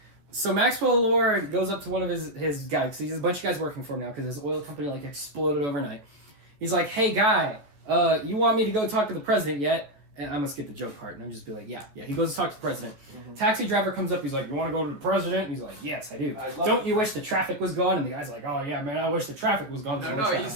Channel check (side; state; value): left; late; 14 ms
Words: So Maxwell Lord goes up to one of his guys, because he has a bunch of guys working for him now, because his oil company like exploded overnight. He's like, hey guy, you want me to go talk to the president yet? And I'm gonna skip the joke part, and I'm just be like, yeah. He goes to talk to the president. Mhm. Taxi driver comes up, he's like, you want to go to the president? And he's like, yes, I do. I love Don't it. you wish the traffic was gone? And the guy's like, oh yeah, man, I wish the traffic was gone. No, he